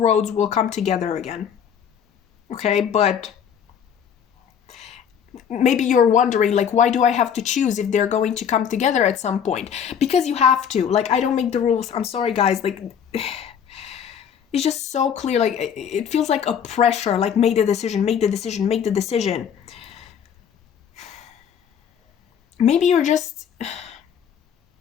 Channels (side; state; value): right; quieter; 8.1 dB